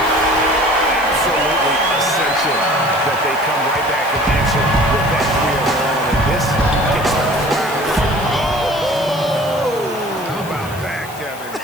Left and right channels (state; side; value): noise; left; hiss, 17 dB below the sound